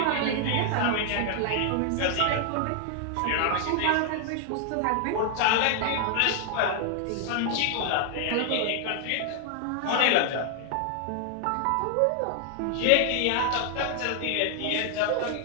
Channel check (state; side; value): different; both; correlation 0.00